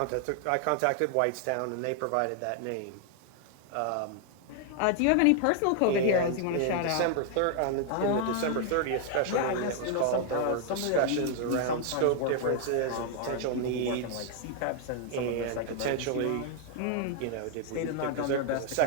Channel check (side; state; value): both; different; correlation 0.00